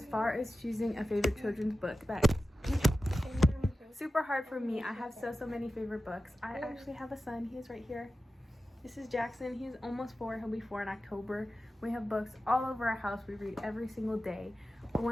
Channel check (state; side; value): normal; both; correlation 0.93